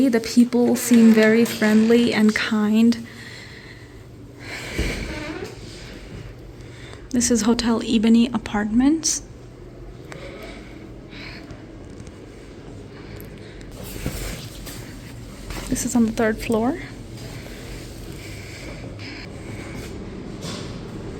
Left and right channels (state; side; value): identical; both; correlation 1.00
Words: The people seem very friendly and kind. This is Hotel Ebony Apartments. This is on the 3rd floor.